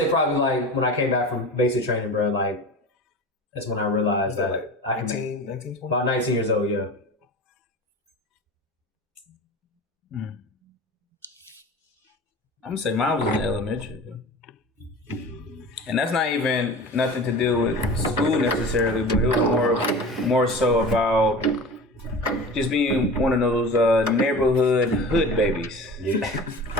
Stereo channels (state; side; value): normal; both; correlation 0.35